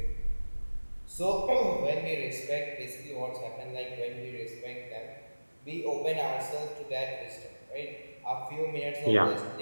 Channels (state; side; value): inverted; both; correlation -1.00